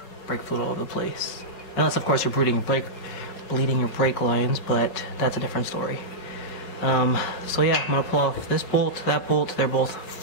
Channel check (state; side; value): late; right; 5.1 ms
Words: brake fluid all over the place. Unless of course you're bleeding your brake lines, but that's a different story. So yeah, I'm gonna pull off this bolt, that bolt. They're both